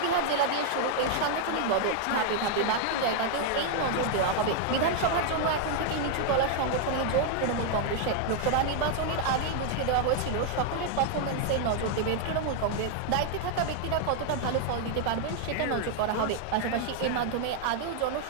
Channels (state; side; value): different; both; correlation 0.00